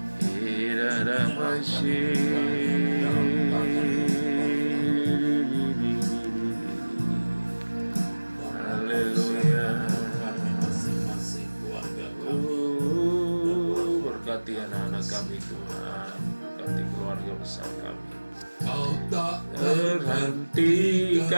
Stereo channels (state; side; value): inverted; both; correlation -1.00